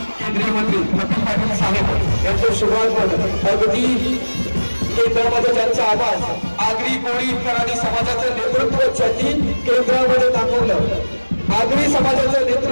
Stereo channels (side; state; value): both; inverted; correlation -1.00